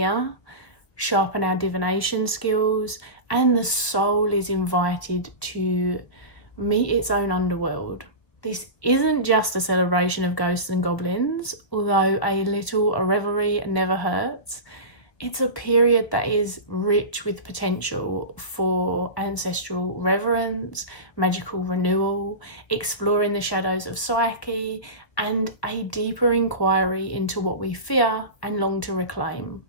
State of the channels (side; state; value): right; late; 1.5 ms